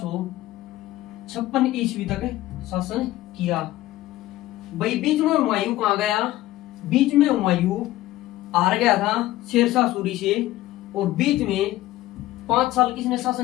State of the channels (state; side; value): quieter; right; 15.9 dB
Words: ईस्वी तक शासन किया भाई। बीच में हुमायूं कहाँ गया? बीच में हुमायूं हार गया था शेरशाह सूरी से। और बीच में 5 साल किसने